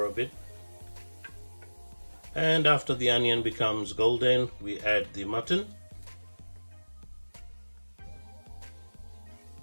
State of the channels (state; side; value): inverted; both; correlation -1.00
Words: a bit. And after the onion becomes golden, we add the mutton.